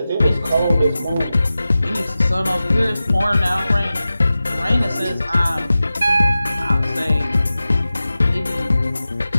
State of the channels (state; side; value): inverted; both; correlation -0.95